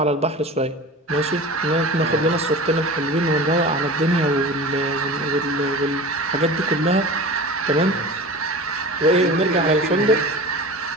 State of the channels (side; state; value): both; normal; correlation 0.34